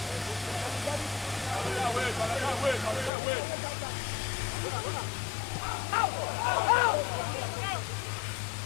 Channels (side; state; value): right; drops out; at 3.1 s